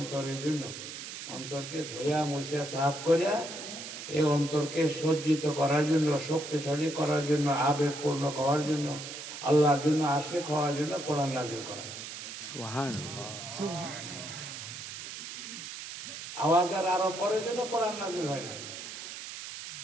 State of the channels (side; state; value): right; noise; hiss, 9 dB below the sound